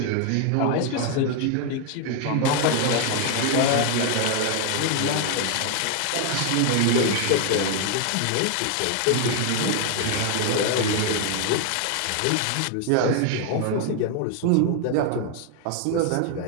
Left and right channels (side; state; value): both; different; correlation 0.00